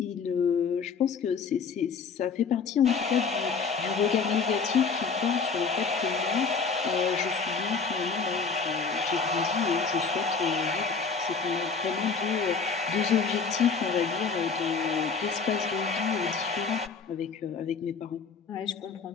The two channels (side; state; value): right; quieter; 5.2 dB